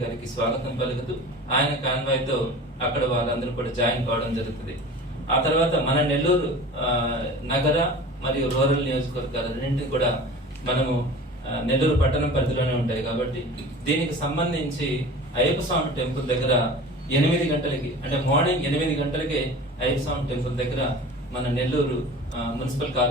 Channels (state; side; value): normal; both; correlation 0.38